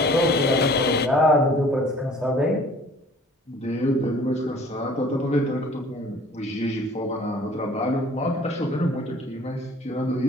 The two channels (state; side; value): normal; both; correlation 0.51